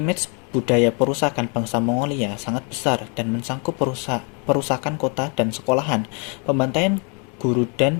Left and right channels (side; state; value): right; quieter; 36.1 dB